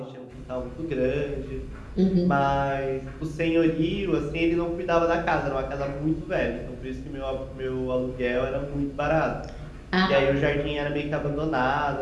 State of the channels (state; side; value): identical; both; correlation 1.00